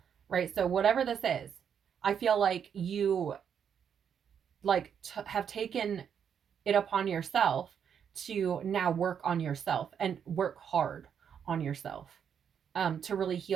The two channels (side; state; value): left; quieter; 7.9 dB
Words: right? So whatever this is, I feel like you like have taken it upon yourself to now work on yourself and work hard on yourself, to really